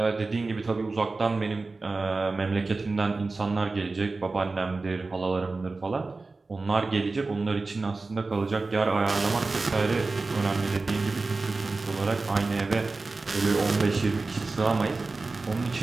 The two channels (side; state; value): left; quieter; 3.6 dB